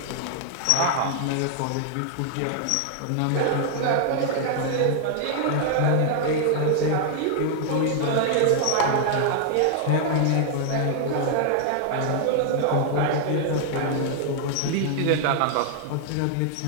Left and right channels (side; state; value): both; different; correlation -0.01